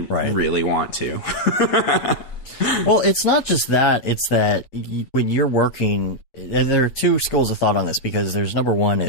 want to. Well, it's not just that. It's that when you're working, and there are two schools of thought on this, because there's number one,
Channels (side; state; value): right; late; 8.6 ms